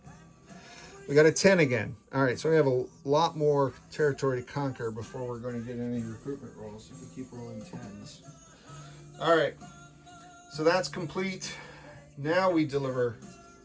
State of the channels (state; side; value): identical; both; correlation 1.00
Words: We got a 10 again. All right, so we have a lot more territory to conquer before we're going to get any recruitment rolls if we keep rolling 10s. All right, so that's complete. Now we deliver